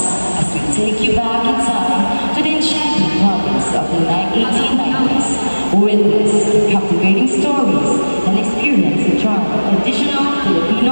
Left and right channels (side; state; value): both; inverted; correlation -1.00